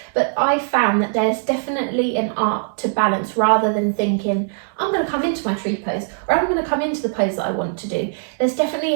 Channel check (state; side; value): silent; left; digital silence